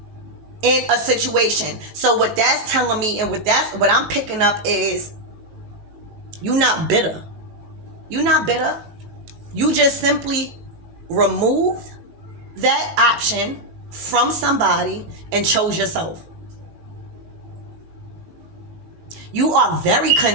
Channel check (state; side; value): late; left; 19 ms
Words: in a situation. So what that's telling me and what I'm picking up is you're not bitter. You're not bitter. You just simply removed that option from somebody and chose yourself. You are very